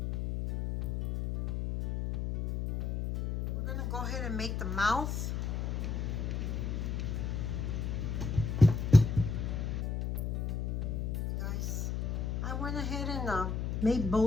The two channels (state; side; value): noise; left; hum, 1 dB below the sound